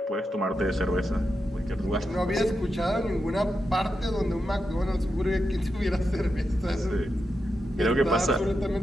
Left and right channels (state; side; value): normal; both; correlation 0.87